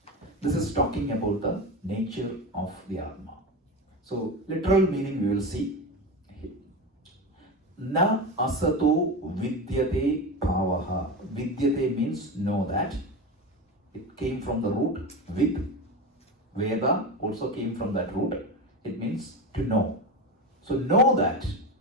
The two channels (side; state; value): both; normal; correlation 0.22